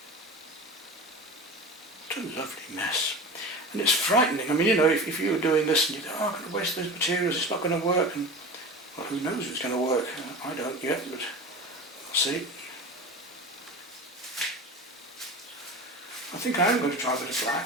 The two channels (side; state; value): both; normal; correlation 0.32